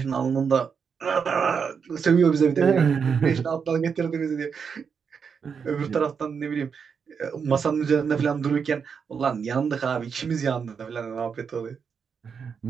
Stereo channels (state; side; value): quieter; left; 6.3 dB